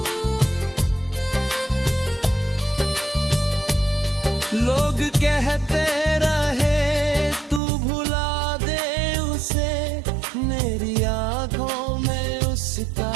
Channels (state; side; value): drops out; left; at 7.6 s